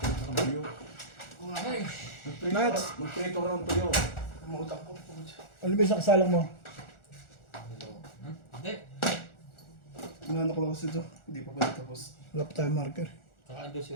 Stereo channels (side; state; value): right; late; 1.4 ms